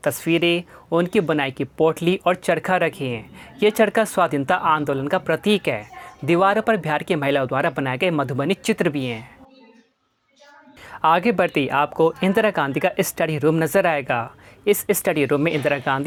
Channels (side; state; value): both; identical; correlation 1.00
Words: तस्वीरें, उनकी बनाई की पोटली और चरखा रखे हैं। ये चरखा स्वाधीनता आंदोलन का प्रतीक है। दीवारों पर बिहार की महिलाओं द्वारा बनाए गए मधुबनी चित्र भी हैं। आगे बढ़ते ही आपको इंदिरा गांधी का स्टडी रूम नज़र आएगा। इस स्टडी रूम में इंदिरा